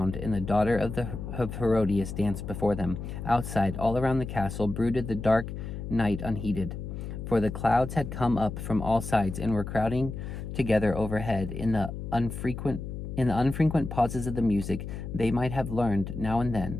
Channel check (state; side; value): noise; left; hum, 7 dB below the sound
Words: and the daughter of Herodias danced before them. Outside, all around the castle, brooded the dark night unheeded, for the clouds had come up from all sides and were crowding together overhead. In the unfrequent pauses of the music, they might have learned, now and